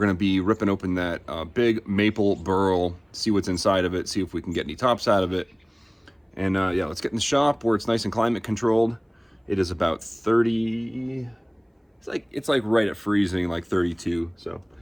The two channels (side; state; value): both; identical; correlation 1.00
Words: to be ripping open that big maple burl, see what's inside of it, see if we can get any tops out of it. And yeah, let's get in the shop where it's nice and climate controlled. It is about 30, it's like right at freezing, like 32, so,